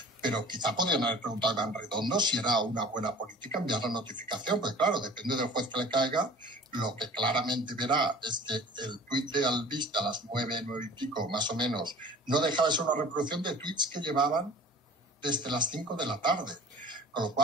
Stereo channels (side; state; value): both; normal; correlation 0.45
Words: pero quizá podrían haber preguntado a Iván Redondo si era una buena política enviar la notificación, porque claro, depende del juez que le caiga. Lo que claramente verá es que el tuit de Albiste a las 9 y pico, más o menos, no dejaba de ser una reproducción de tuits que llevaban desde las 5 de la tarde. Con lo